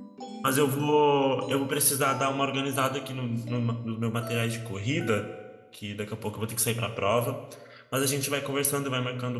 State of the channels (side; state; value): both; identical; correlation 1.00